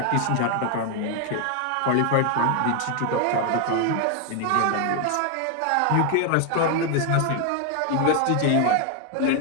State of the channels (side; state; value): both; different; correlation 0.00